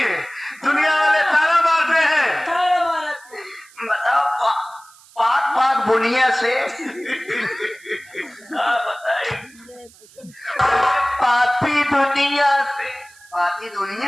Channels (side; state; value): right; noise; hiss, 25 dB below the sound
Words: दुनिया वाले ताना मारते हैं। बताओ पाक पाक बुनिया से पापी दुनिया से पापी